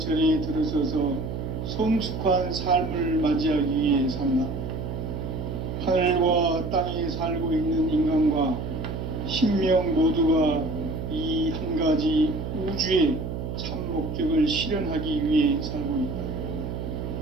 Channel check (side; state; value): right; noise; hum, 5 dB below the sound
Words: 들어서서 성숙한 삶을 맞이하기 위해 산다. 하늘과 땅에 살고 있는 인간과 신명 모두가 이 한 가지 우주의 참 목적을 실현하기 위해 살고 있다.